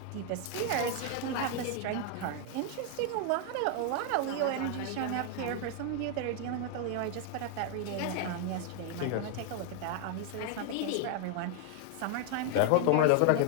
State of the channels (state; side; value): different; both; correlation 0.00